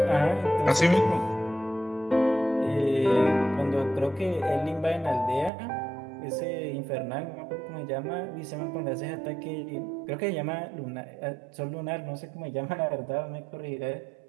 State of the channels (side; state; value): left; drops out; at 5.5 s